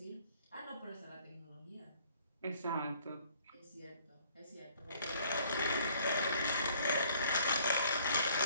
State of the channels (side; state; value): both; inverted; correlation -0.60